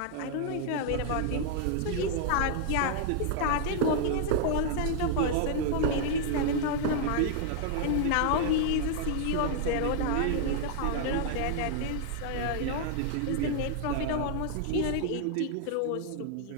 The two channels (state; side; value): different; both; correlation 0.00